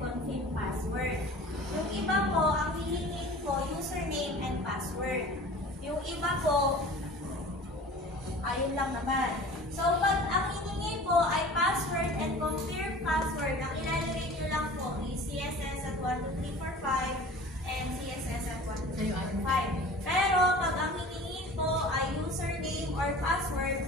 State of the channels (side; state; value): both; normal; correlation 0.41